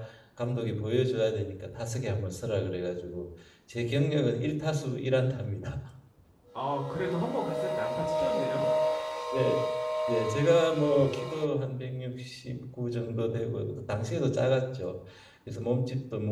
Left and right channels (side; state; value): both; identical; correlation 1.00